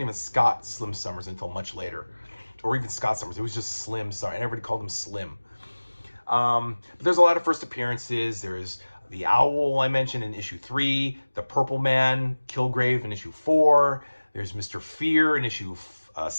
even Scott Slim Summers until much later, or even Scott Summers. It was just Slim Summers, and everybody called him Slim. But there's a lot of first appearances. There's the Owl I mentioned in issue 3, the Purple Man, Kilgrave in issue 4. There's Mr. Fear in issue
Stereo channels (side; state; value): both; inverted; correlation -1.00